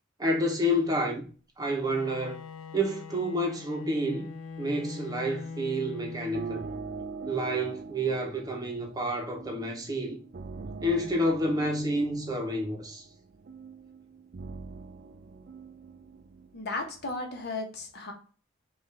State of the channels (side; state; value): both; normal; correlation 0.45